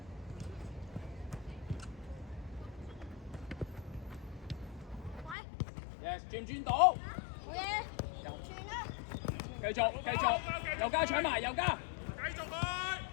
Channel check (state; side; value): drops out; right; at 5.4 s